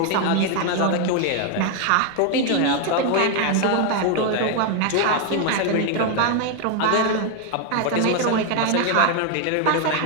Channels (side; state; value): both; different; correlation 0.01